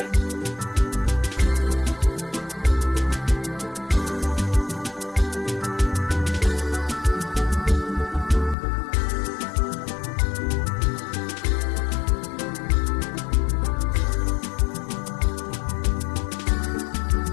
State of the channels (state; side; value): drops out; right; at 8.6 s